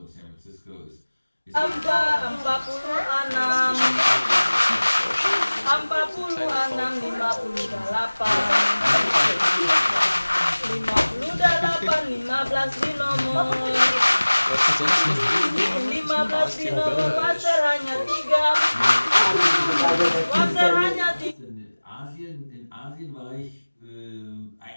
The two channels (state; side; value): inverted; both; correlation -1.00